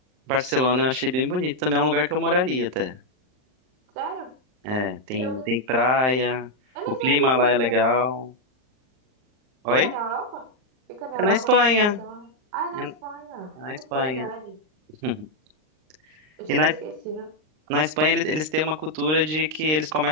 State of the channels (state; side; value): late; left; 39 ms